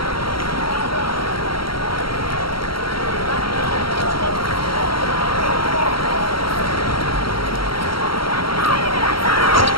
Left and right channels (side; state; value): right; late; 0.74 ms